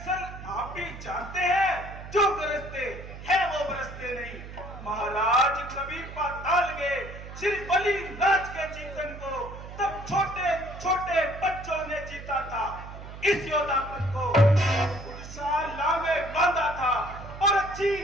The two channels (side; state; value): right; noise; hum, 12 dB below the sound